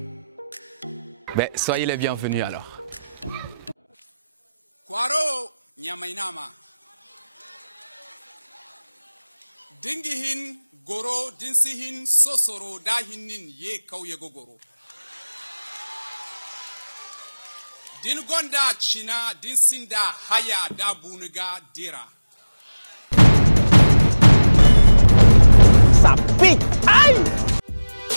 Ben, soyez les bienvenus alors. Kwaro nyamainama. Dingihin goro dinsihin sosoro dahinin ye kauye gogoro. Din gonda china dinsinda haya da buniga dira. Ça pique! Aïe!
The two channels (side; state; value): both; inverted; correlation -0.98